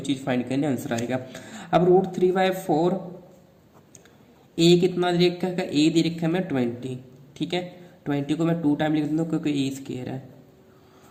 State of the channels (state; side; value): identical; both; correlation 1.00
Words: चीज़ फाइंड करने आंसर आएगा। अब √3/4, ए कितना दे रखा है, ए दे रखा है मैं 20, ठीक है। 20 को मैं 2 टाइम लिख देता हूँ क्योंकि ए स्क्वायर है।